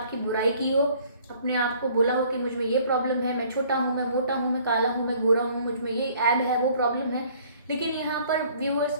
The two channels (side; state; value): both; inverted; correlation -0.57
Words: की बुराई की हो, अपने आप को बोला हो कि मुझ में ये प्रॉब्लम है, मैं छोटा हूँ, मैं मोटा हूँ, मैं काला हूँ, मैं गोरा हूँ, मुझ में ये ऐब है, वो प्रॉब्लम है। लेकिन यहाँ पर